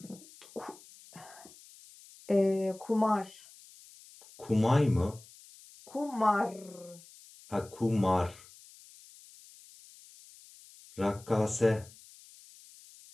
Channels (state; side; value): noise; left; hiss, 22 dB below the sound